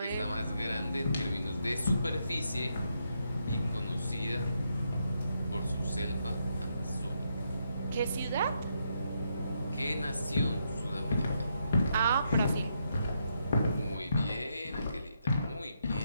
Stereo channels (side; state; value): both; inverted; correlation -0.79